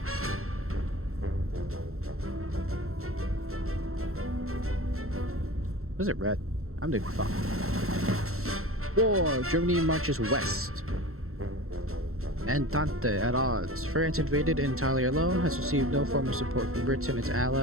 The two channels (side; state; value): left; late; 0.63 ms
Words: Was it red? I'm doing fine. War! Germany marches west. Entente at odds. France, invaded entirely alone, has received no form of support from Britain, its